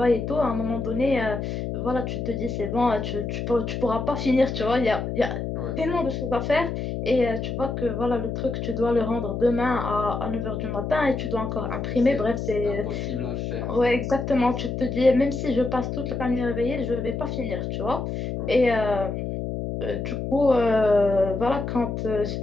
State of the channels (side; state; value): left; noise; hum, 4 dB below the sound